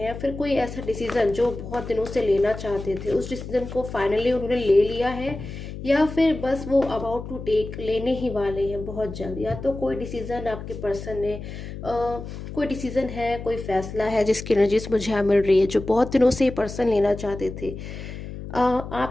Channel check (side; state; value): left; noise; hum, 10 dB below the sound